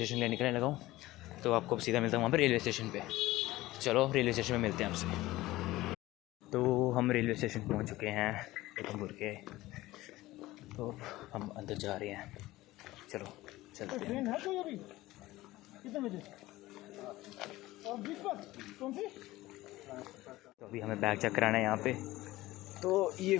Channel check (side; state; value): right; quieter; 17.7 dB